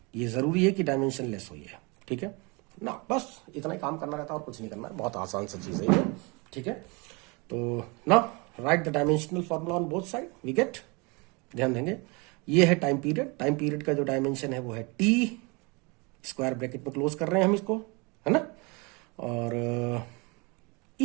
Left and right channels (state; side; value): quieter; left; 28.6 dB